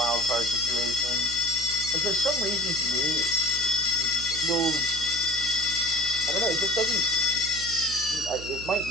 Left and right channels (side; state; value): right; noise; hum, 13 dB below the sound